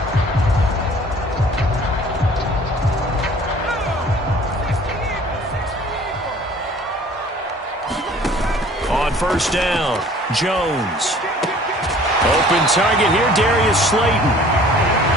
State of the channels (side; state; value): both; normal; correlation 0.51